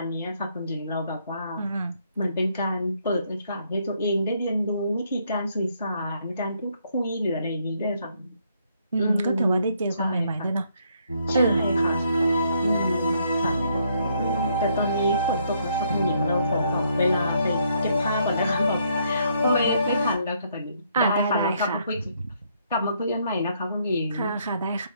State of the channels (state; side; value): inverted; both; correlation -0.71